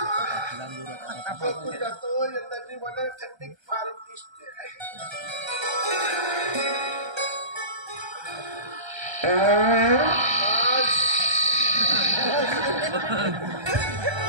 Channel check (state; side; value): late; left; 1.3 ms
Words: जातो यंदाची मला थंडी फार दिसते